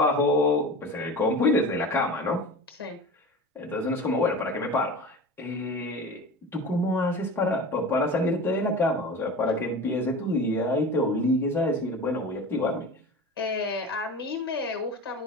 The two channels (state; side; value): normal; both; correlation 0.33